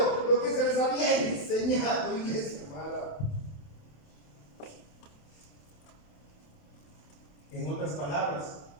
lo que se les había enseñado, iglesia amada. En otras palabras,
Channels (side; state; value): right; late; 28 ms